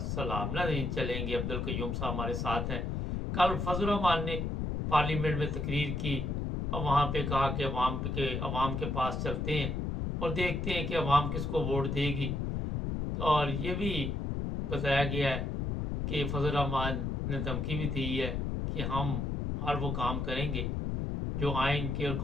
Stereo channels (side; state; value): left; noise; rumble, 1 dB below the sound